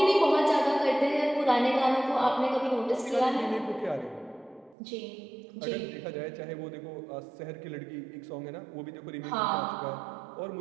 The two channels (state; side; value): drops out; left; at 4.8 s